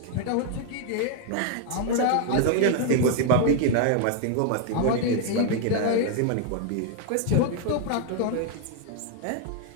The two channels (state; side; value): different; both; correlation 0.00